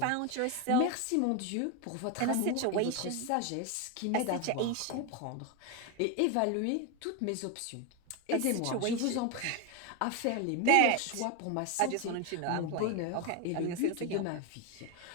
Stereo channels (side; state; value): both; different; correlation 0.02